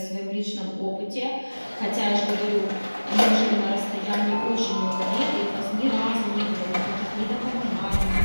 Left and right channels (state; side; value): inverted; both; correlation -1.00